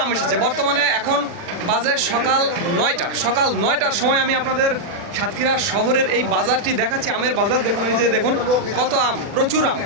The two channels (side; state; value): left; late; 40 ms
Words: আম এসেছে। বর্তমানে এখন বাজে সকাল 9টা। সকাল 9টার সময় আমি আপনাদের সাতক্ষীরা শহরের এই বাজারটি দেখাচ্ছি, আমের বাজার। দেখুন, এই যে দেখুন কত আম, প্রচুর আম।